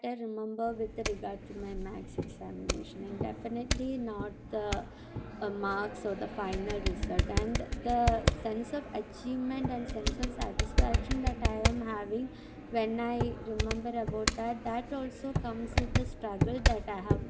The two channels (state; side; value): identical; both; correlation 1.00